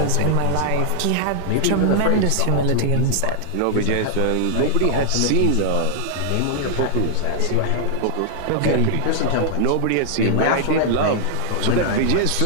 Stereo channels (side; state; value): both; different; correlation -0.01